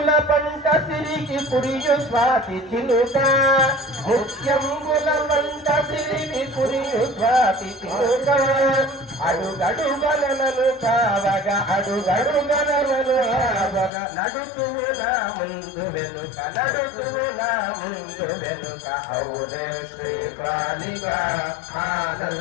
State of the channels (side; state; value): right; drops out; at 13.9 s